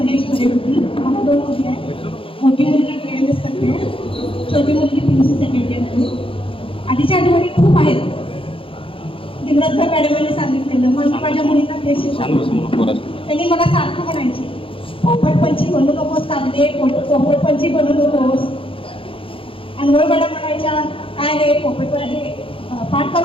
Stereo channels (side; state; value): right; late; 0.26 ms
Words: मध्ये होती. मला 2 मुली आहेत. मोठी मुलगी PMS करते, छोटी मुलगी PUC सेकंड इयर मध्ये. आधीच्या आठवणी खूप आहेत. दिग्रजकर मॅडमांनी सांगितलेलं मग मी माझ्या मुलींना तेच शिकवलं. त्यांनी मला सारखं म्हणायची पोपटपंची बनू नकोस कागदे, पोपटपंची बनू नकोस. अनवळ मॅडम म्हणायच्या काय रे पोपट हे पाठ